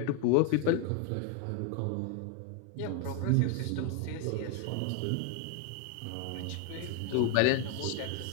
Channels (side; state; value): both; different; correlation 0.01